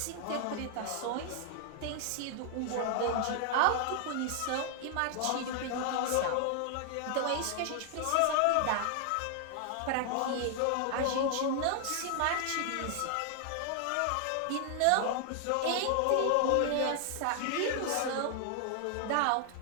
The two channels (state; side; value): different; both; correlation 0.00